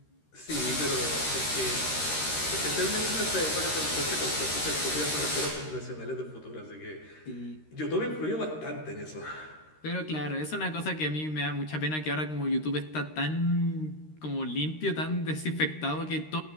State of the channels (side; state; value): right; late; 13 ms